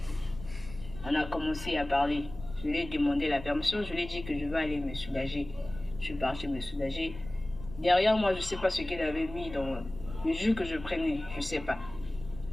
On a commencé à parler. Je lui ai demandé la permission. Je lui ai dit que je vais aller me soulager. Je suis partie me soulager. Derrière moi, je ne sais pas ce qu'il avait mis dans le jus que je prenais. Je ne sais pas.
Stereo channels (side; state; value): left; noise; rumble, 14 dB below the sound